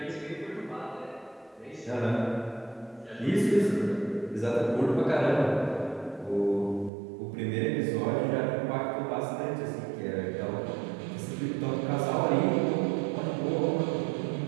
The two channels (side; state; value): left; drops out; at 6.9 s